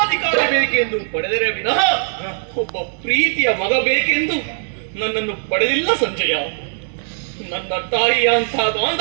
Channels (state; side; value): silent; left; digital silence